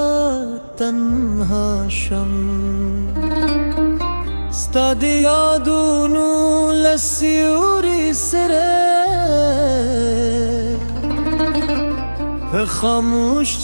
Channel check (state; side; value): inverted; both; correlation -1.00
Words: تنها شم استادي يادونو للسيوري سري خاموش